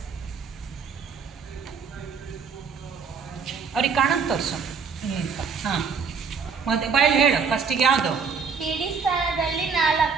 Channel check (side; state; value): left; quieter; 5.7 dB